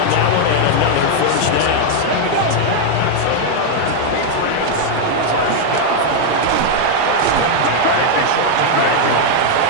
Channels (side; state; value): both; different; correlation 0.00